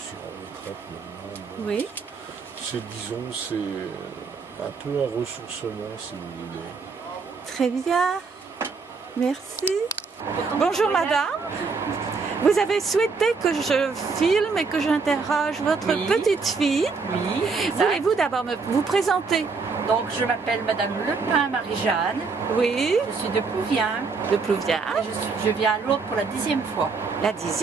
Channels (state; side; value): quieter; left; 4.7 dB